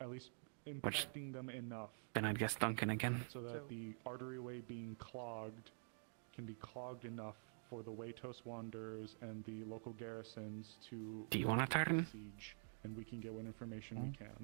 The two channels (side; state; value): left; silent; digital silence